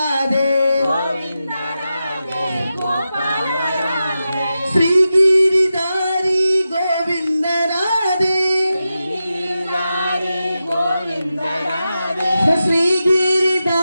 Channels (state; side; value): inverted; both; correlation -0.91